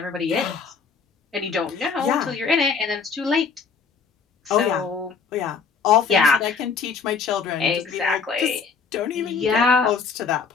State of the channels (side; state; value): right; quieter; 5.5 dB